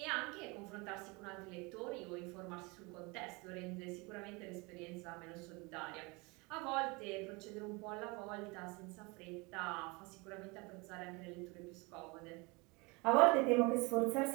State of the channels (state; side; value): quieter; left; 27.1 dB